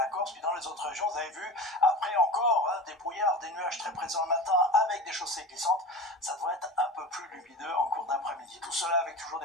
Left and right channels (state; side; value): normal; both; correlation 0.31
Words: Corse. Puis dans les autres régions, vous avez vu, après encore des brouillards, des nuages très présents le matin avec des chaussées glissantes. Ça devrait être un peu plus lumineux en cours d'après-midi. Tout cela avec toujours